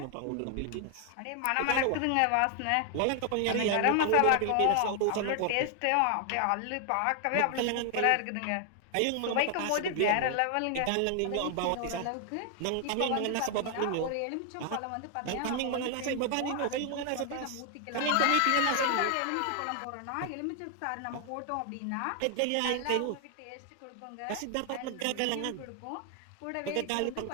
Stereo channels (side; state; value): both; different; correlation 0.00